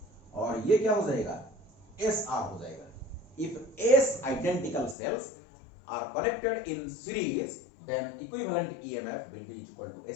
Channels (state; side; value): drops out; right; at 5.0 s